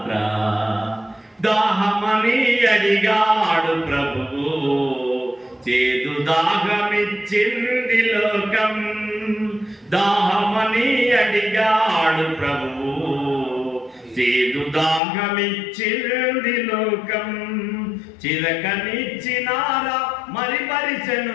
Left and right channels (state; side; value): drops out; right; at 15.0 s